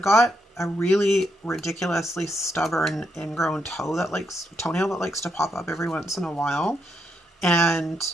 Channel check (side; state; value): both; normal; correlation 0.79